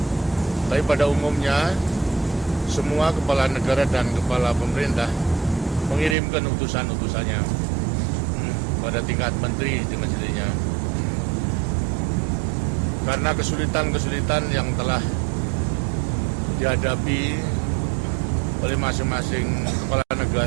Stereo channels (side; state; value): left; drops out; at 6.2 s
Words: Tapi pada umumnya semua kepala negara dan kepala pemerintah mengirimkan utusan-utusannya pada tingkat menteri dengan sendirinya. Karena kesulitan-kesulitan yang telah dihadapi oleh masing-masing kepala